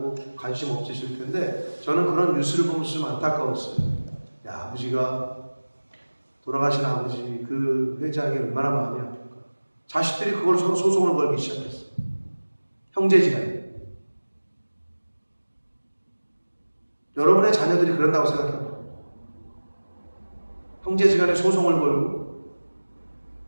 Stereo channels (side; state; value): both; inverted; correlation -1.00